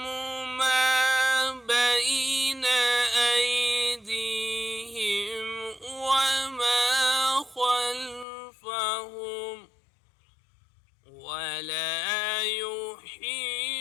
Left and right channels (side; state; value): right; drops out; at 8.2 s